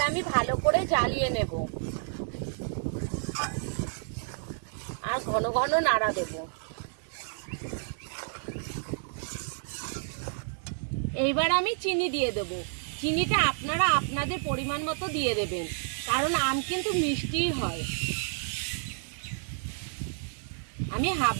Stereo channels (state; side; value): silent; left; digital silence